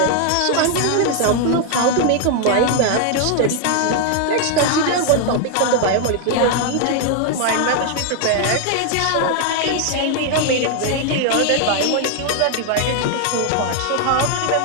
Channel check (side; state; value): both; different; correlation 0.00